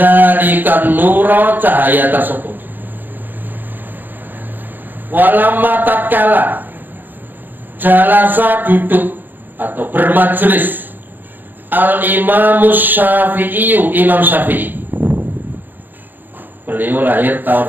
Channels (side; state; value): left; late; 0.089 ms